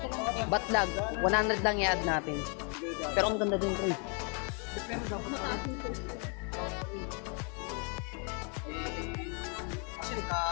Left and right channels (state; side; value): quieter; right; 37.2 dB